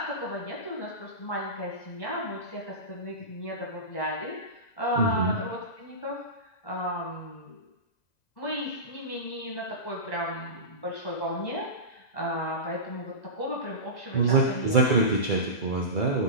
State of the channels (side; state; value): right; late; 2.0 ms